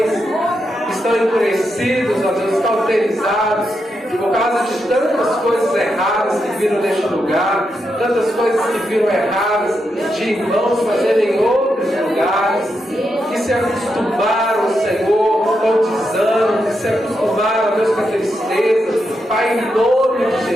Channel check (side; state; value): both; normal; correlation 0.84